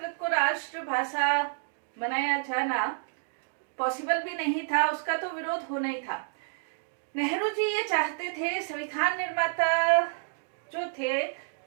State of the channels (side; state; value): left; silent; digital silence